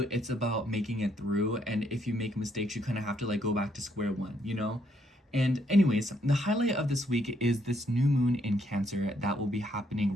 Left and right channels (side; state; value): both; normal; correlation 0.72